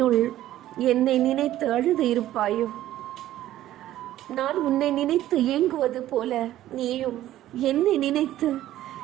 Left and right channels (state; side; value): quieter; left; 13.6 dB